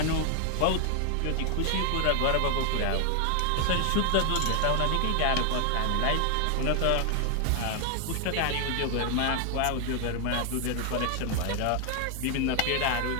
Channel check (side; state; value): both; different; correlation 0.00